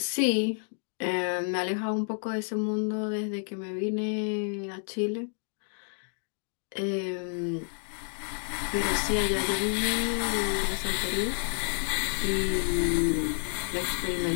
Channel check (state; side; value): silent; right; digital silence